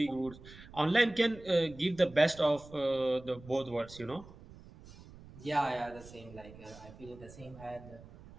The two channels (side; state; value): right; noise; rumble, 19 dB below the sound